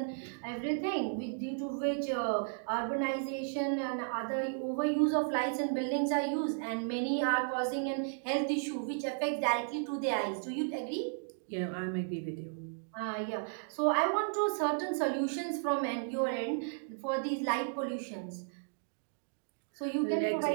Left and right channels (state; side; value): silent; left; digital silence